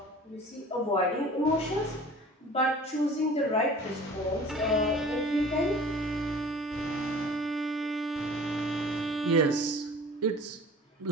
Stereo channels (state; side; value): normal; both; correlation 0.44